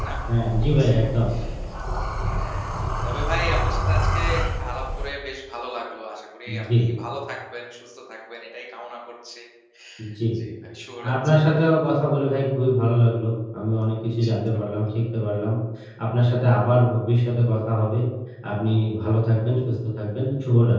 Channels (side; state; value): both; identical; correlation 1.00